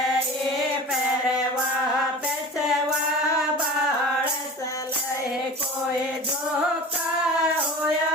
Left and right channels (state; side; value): normal; both; correlation 0.36